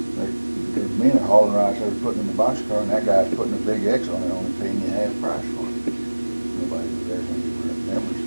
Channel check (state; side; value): inverted; both; correlation -1.00